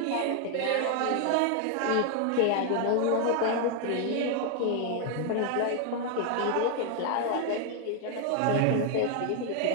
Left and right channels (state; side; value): different; both; correlation 0.00